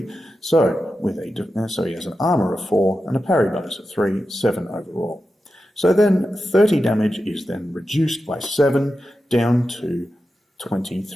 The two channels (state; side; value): normal; both; correlation 0.91